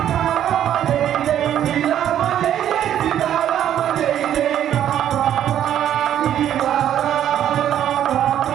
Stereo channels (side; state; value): left; quieter; 10.7 dB